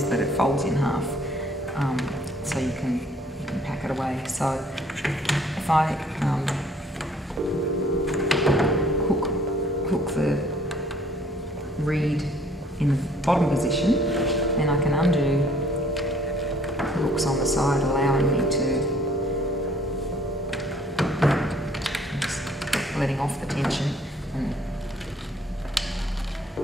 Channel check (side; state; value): both; normal; correlation 0.59